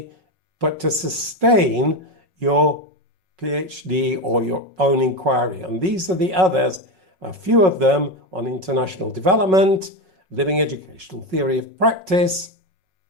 but to sustain your PhD or your own inquiry. And these are the others, a few of them on international development, living educational theory of practice,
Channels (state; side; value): late; left; 5.4 ms